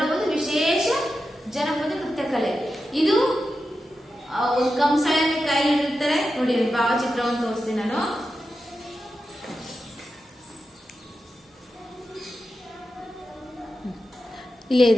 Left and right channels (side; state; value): both; normal; correlation 0.90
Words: ಒಂದು ವಿಶೇಷ ಜನಪದ ನೃತ್ಯ ಕಲೆ. ಇದು ಒಂದು ಕಂಸಾಳೆಯನ್ನು ಕೈ ಹಿಡಿತಾರೆ ನೋಡಿ. ಭಾವಚಿತ್ರವನ್ನು ತೋರಿಸ್ತೀನಿ ನಾನು. ಇಲ್ಲೇ